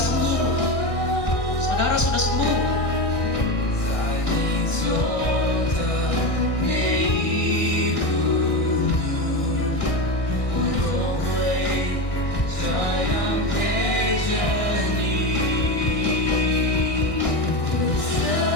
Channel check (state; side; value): late; right; 1.6 ms